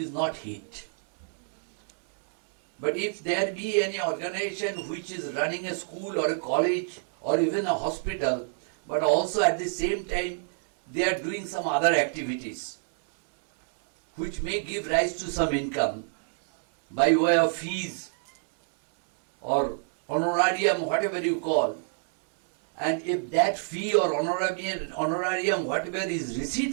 not HEAT. But if there be any organization which is running a school or a college or even a hospital, but also at the same time they are doing some other activities which may give rise to some income by way of fees or honorarium, whatever you call, and if that fee or honorarium, whatever is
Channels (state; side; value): silent; left; 60 dB below the other